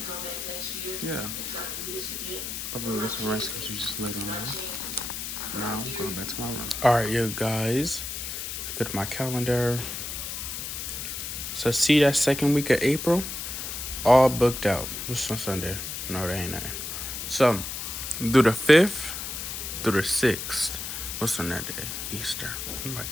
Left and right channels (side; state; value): left; noise; hiss, 6 dB below the sound